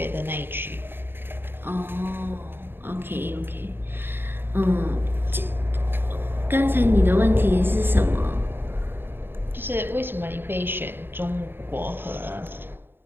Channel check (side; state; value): left; late; 0.10 ms